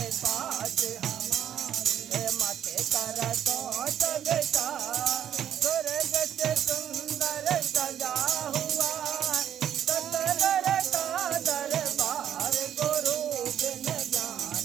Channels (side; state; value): left; quieter; 10.0 dB